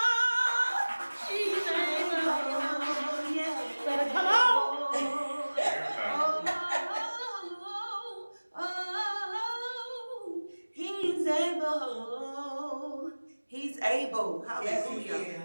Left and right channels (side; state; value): both; inverted; correlation -1.00